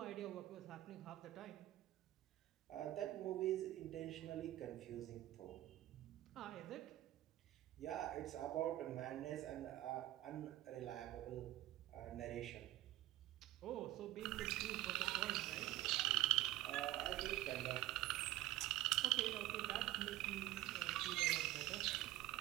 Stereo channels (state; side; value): quieter; left; 16.0 dB